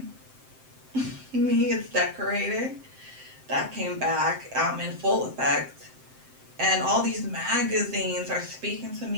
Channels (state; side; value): late; left; 7.7 ms